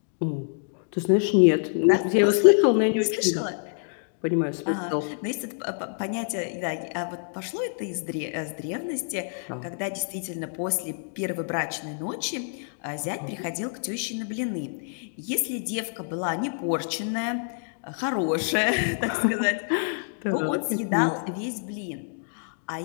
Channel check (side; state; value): right; silent; digital silence